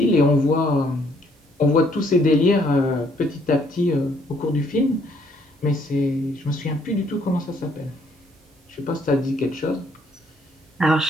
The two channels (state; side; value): normal; both; correlation 0.67